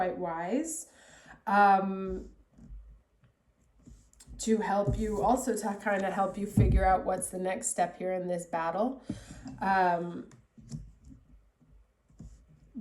wise. To help you, also to kind of help you figure out what's the next step here in this battle.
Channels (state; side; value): identical; both; correlation 1.00